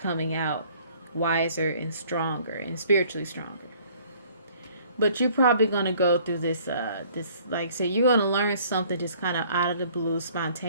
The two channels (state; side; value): inverted; both; correlation -0.57